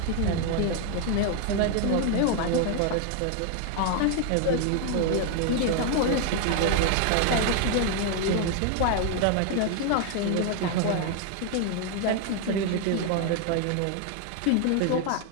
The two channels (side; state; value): both; different; correlation 0.00